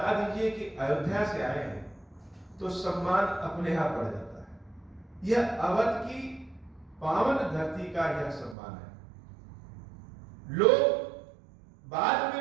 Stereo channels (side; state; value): left; drops out; at 8.6 s